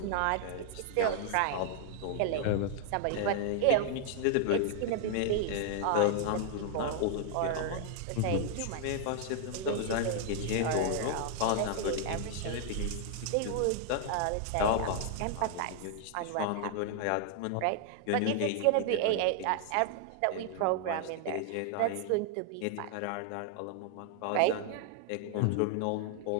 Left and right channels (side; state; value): both; different; correlation 0.00